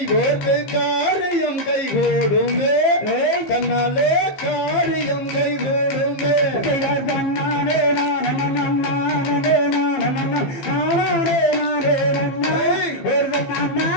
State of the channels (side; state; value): right; late; 15 ms